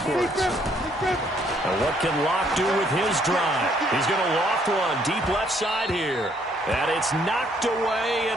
And what can Locke do with his drive? He's going to loft one deep left side here. And it's knocked away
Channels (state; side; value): normal; both; correlation 0.67